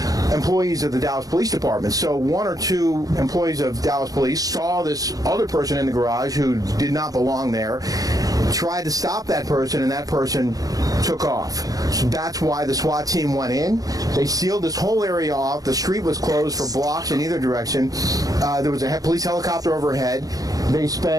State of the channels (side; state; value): left; late; 0.18 ms